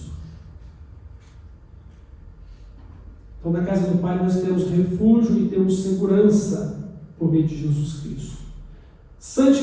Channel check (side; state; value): both; identical; correlation 1.00